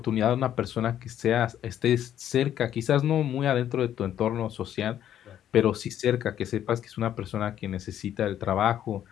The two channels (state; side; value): quieter; right; 10.8 dB